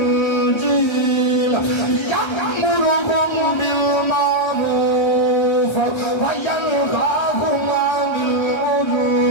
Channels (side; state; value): right; late; 1.3 ms